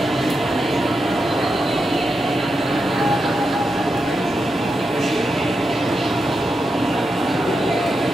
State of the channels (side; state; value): both; normal; correlation 0.87